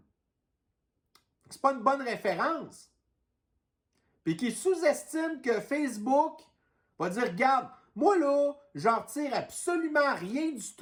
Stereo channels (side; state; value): both; identical; correlation 1.00